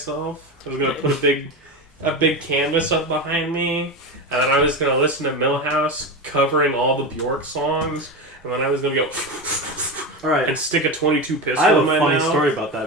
I was gonna put a big canvas up behind me, and then I was gonna listen to Millhouse covering all the Bjork songs, and then I was gonna go Alright. and stick a 22 pistol I have in a my funny mouth. story about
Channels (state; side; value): normal; both; correlation 0.20